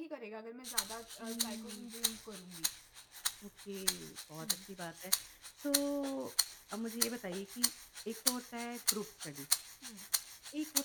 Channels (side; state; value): both; identical; correlation 1.00